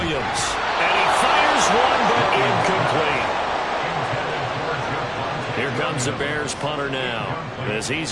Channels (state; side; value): identical; both; correlation 1.00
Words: And he fires one, but incomplete. Here comes the Bears punter now, as he's